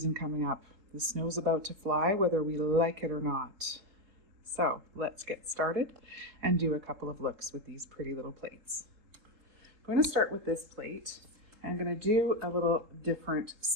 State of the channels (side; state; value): left; late; 3.7 ms